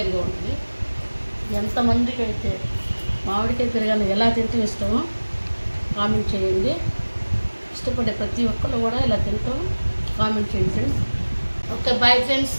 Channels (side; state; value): both; inverted; correlation -1.00